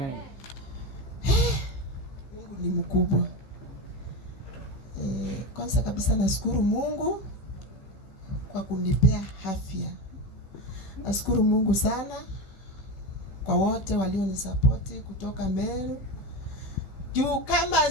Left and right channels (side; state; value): right; late; 16 ms